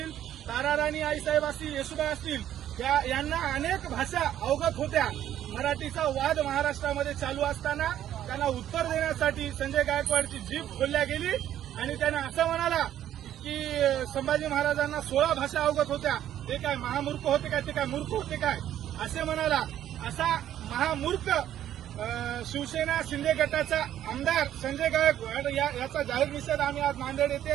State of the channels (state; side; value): quieter; left; 11.4 dB